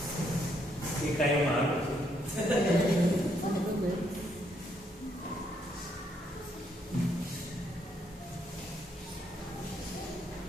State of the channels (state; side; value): normal; both; correlation 0.73